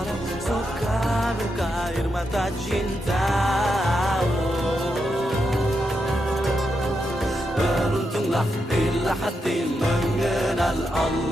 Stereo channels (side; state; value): both; normal; correlation 0.84